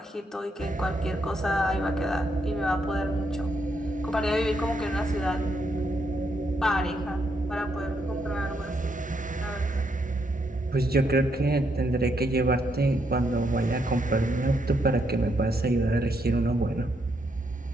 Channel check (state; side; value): normal; both; correlation 0.77